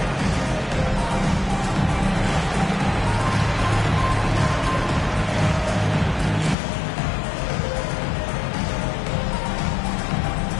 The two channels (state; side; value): drops out; right; at 6.6 s